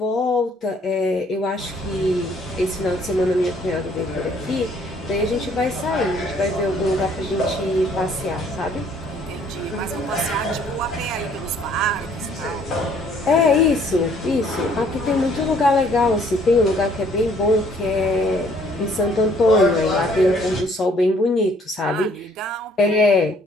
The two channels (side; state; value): both; normal; correlation 0.61